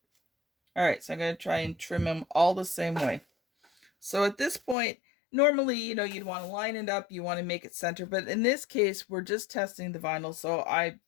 All right, so I'm going to try and trim them all the same way. So at this point, Normally, you know, you'd want to line it up, you want to make it center, but in this case, we're just testing the vinyl, so I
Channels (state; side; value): drops out; right; at 4.8 s